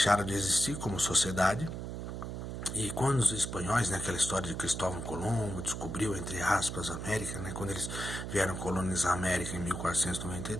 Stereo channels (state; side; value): noise; right; hum, 6 dB below the sound